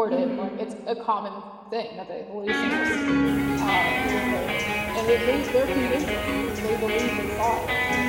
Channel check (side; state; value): both; identical; correlation 1.00